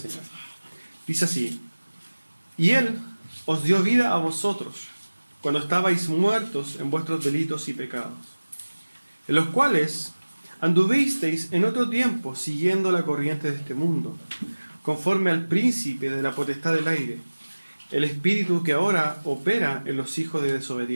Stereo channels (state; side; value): inverted; both; correlation -1.00